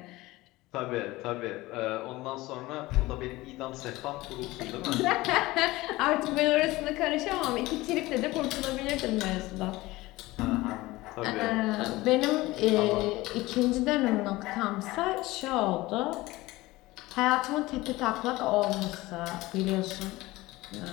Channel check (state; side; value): quieter; right; 19.4 dB